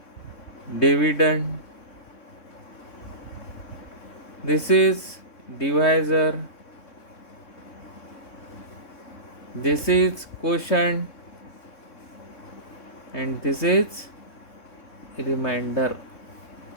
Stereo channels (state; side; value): late; right; 3.6 ms